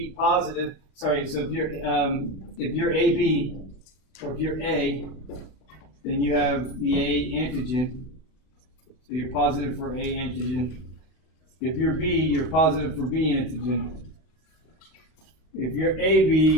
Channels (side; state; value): right; late; 32 ms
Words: positive, sorry, so if you're AB, or if you're A, then you have the A antigen. So you're positive for A antigen. If you're B, you're positive for B antigen. If you're AB,